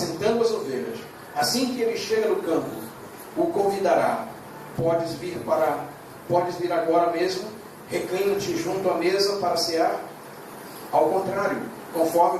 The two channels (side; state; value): both; identical; correlation 1.00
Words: as ovelhas, assim que ele chega no campo, o convidará: podes vir agora mesmo, reclina-te junto à mesa para cear? Ao contrário, conforme